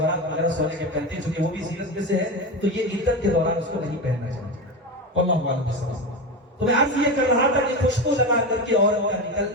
وغیرہ سونے کے پہنتے ہیں چونکہ وہ بھی زینت میں سے ہے، تو یہ عدت کے دوران اس کو نہیں پہننا چاہیے، واللہ اعلم۔ تو میں عرض یہ کر رہا تھا کہ خوشبو لگا کر کے عورت کا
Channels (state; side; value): normal; both; correlation 0.20